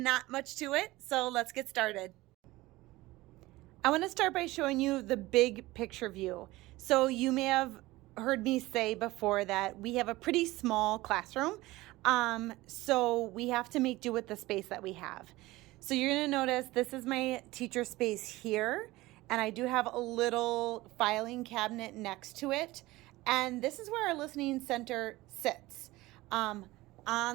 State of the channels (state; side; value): quieter; left; 19.2 dB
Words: much to it, so let's get started. I want to start by showing you the big picture view. So you may have heard me say before that we have a pretty small classroom, so we have to make do with the space that we have. So you're going to notice this is my teacher space here, and I do have a little filing cabinet next to it, and this is where our listening center sits. On